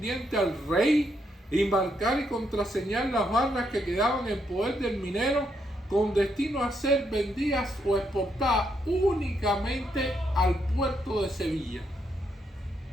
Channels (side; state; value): both; normal; correlation 0.77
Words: al rey y marcar y contraseñar las barras que quedaban en poder del minero con destino a ser vendidas o exportadas únicamente al puerto de Sevilla.